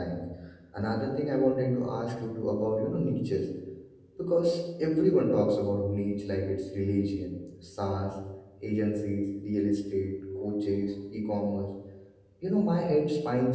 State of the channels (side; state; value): both; identical; correlation 1.00